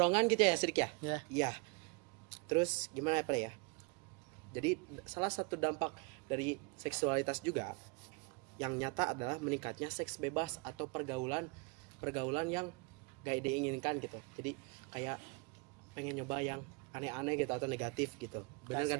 gitu ya, Sidik ya? Iya. Iya. Terus gimana ya? Jadi salah satu dampak dari seksualitas juga yang nyata adalah meningkatnya seks bebas atau pergaulan yang gak diinginkan gitu. Jadi kayak pengen nyoba yang aneh-aneh gitu atau negatif gitu. Benar nggak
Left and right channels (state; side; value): quieter; left; 30.6 dB